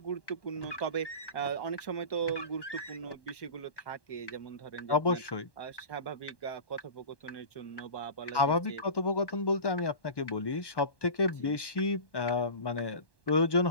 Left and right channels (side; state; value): right; late; 1.1 ms